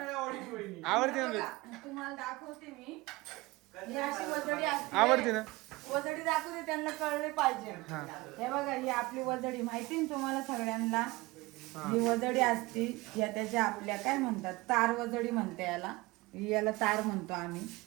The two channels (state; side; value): quieter; left; 21.9 dB